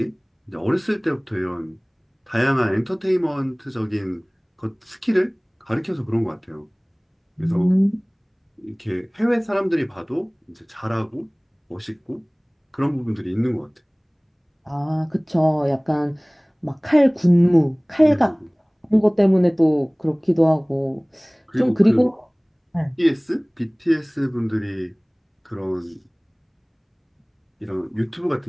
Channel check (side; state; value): both; identical; correlation 1.00